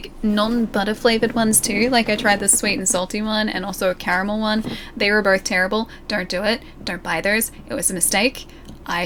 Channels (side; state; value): both; identical; correlation 1.00